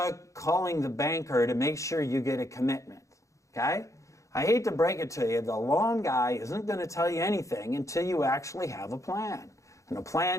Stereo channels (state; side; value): late; right; 0.15 ms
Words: calling the banker to make sure you get a commitment, okay? I hate to break it to you, the loan guy isn't going to tell you anything until you actually have a plan. And a